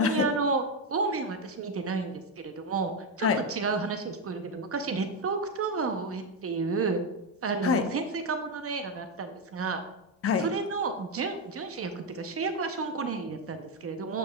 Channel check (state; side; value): normal; both; correlation 0.07